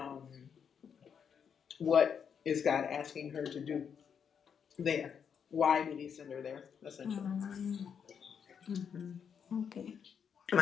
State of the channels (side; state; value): right; quieter; 7.3 dB